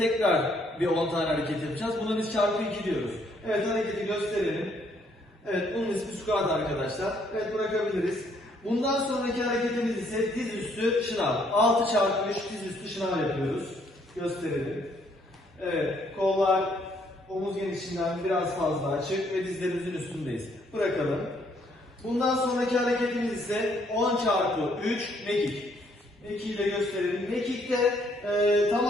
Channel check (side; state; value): both; normal; correlation 0.68